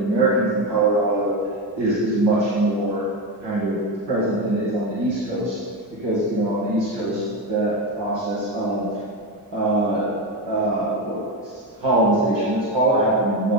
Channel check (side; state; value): both; normal; correlation 0.14